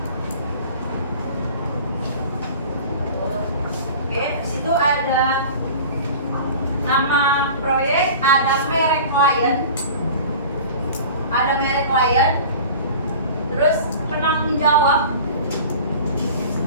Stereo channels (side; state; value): both; inverted; correlation -0.40